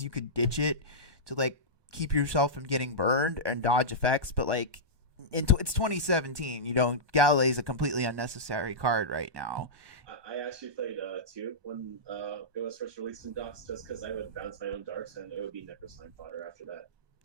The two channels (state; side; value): late; left; 1.1 ms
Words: you could ditch it to like keep yourself from getting burned and dodge effects. But like, it's 2017. Galilei is a completely unnecessary card right now. I actually played two when it was first released in Docs, just because I would bounce my own darks and it would be Necro Slime fodder after that.